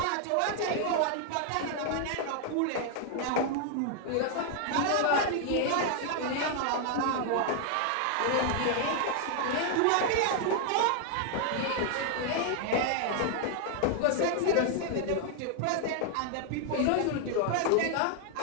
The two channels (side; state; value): both; different; correlation 0.00